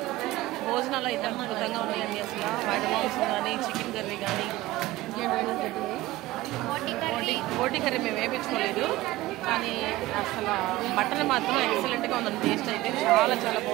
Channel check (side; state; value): left; quieter; 17.5 dB